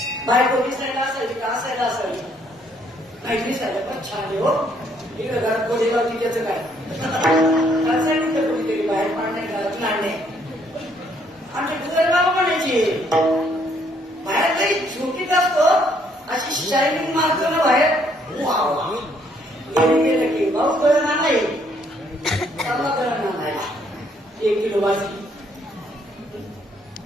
बायको दिसायला असावी का असायला असावी? नाही दिसायला पण छान आहे हो. इकडे घरात कोणी लावती त्याचं काय सांगितलं कोणीतरी बाहेर पाडणे घरात लाडणे. आमच्या दुसरे बाबा म्हणायचे बाहेर काही झोकीत असतो, अशी शायनिंग मारतो ना बाहेर. गेलं की भाऊ गळण आणाय, चालला गळण आणायला 1 किलो भाजी.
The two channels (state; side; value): normal; both; correlation 0.68